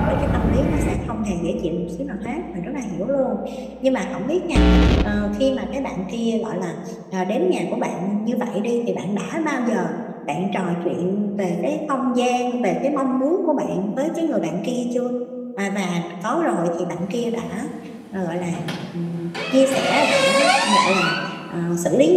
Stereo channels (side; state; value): both; identical; correlation 1.00